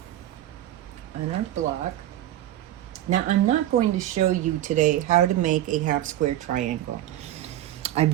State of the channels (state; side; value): quieter; left; 13.3 dB